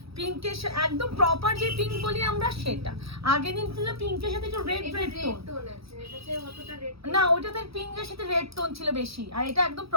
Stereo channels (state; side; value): late; left; 0.77 ms